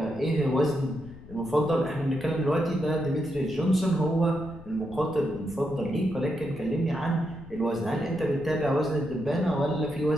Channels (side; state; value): left; noise; rumble, 18 dB below the sound